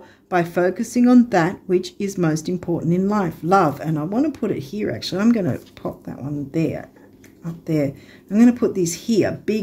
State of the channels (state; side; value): identical; both; correlation 1.00